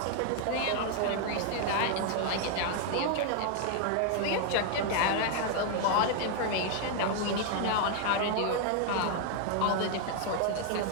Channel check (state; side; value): different; both; correlation 0.00